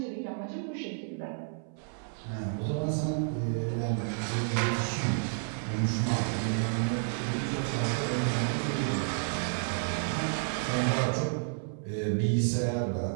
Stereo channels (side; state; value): left; silent; 57 dB below the other